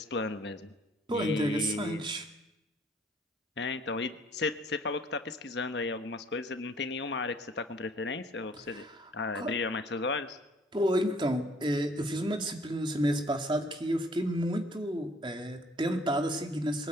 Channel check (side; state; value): both; normal; correlation 0.59